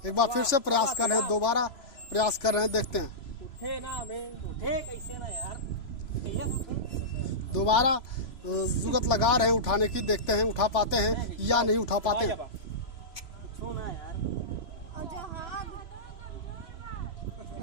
एक बार फिर से प्रयास कर रहे हैं, दोबारा प्रयास कर रहे हैं, देखते हैं। उठे कैसे ना यार, दोबारा जुगत लगा रहे हैं उठाने की, देखते हैं उठा पाते हैं या नहीं उठा पाते हैं।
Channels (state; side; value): late; right; 3.0 ms